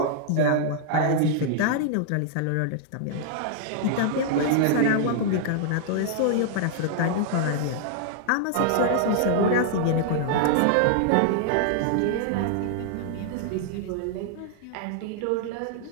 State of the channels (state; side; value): different; both; correlation -0.01